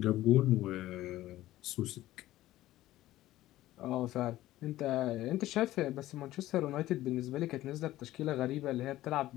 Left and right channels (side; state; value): right; quieter; 15.3 dB